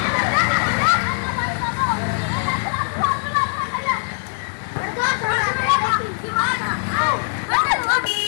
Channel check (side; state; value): right; silent; 57 dB below the other